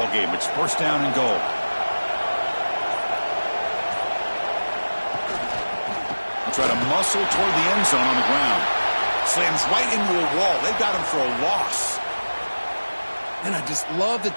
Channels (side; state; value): both; inverted; correlation -1.00